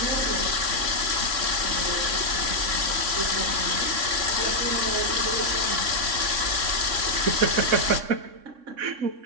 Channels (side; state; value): left; late; 3.6 ms